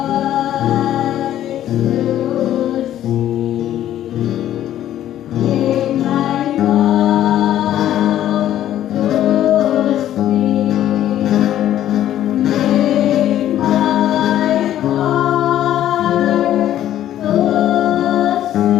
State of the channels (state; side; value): quieter; right; 12.0 dB